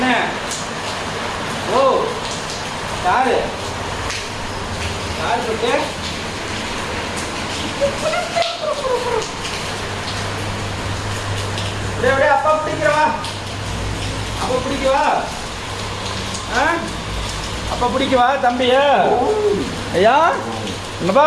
ஓ காரு போட்டு அப்படியே அப்பா பிடிக்கிறவா. அப்பா பிடிக்கவா? அப்பா பிடிக்கவா தம்பியா? ஐயா என்னப்பா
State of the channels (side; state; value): both; identical; correlation 1.00